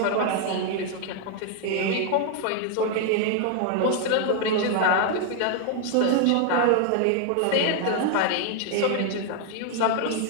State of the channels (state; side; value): different; both; correlation 0.00